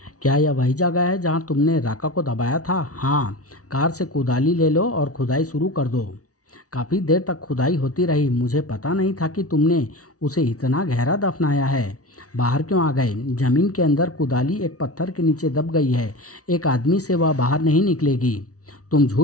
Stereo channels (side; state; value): right; late; 0.67 ms